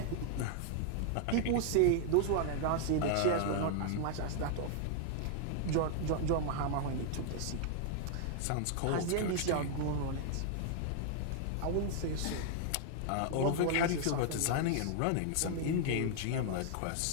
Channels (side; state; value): both; different; correlation 0.00